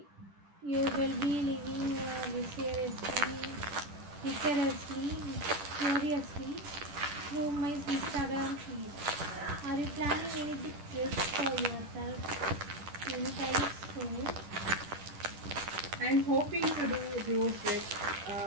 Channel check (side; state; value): left; late; 10 ms